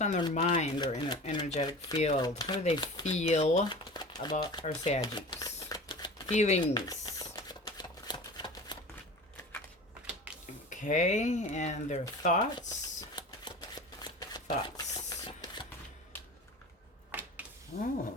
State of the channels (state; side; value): normal; both; correlation 0.36